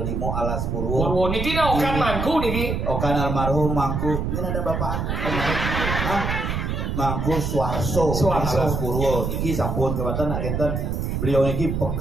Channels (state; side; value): noise; right; rumble, 2 dB below the sound